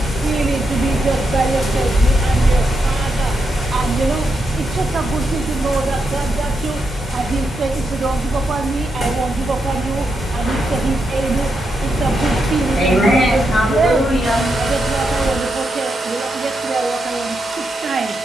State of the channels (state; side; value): normal; both; correlation 0.83